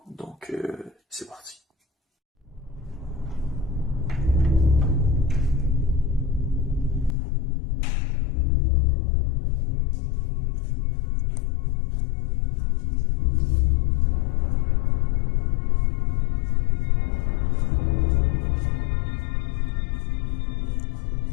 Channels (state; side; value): drops out; right; at 7.2 s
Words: Donc, c'est parti.